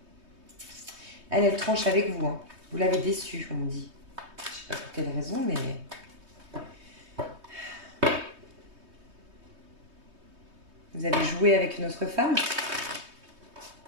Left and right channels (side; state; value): left; late; 3.2 ms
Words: Elle tranche avec vous. Hein. Vous l'avez déçue, on me dit. Je ne sais pas pour quelle raison, mais... Vous avez joué avec une autre femme?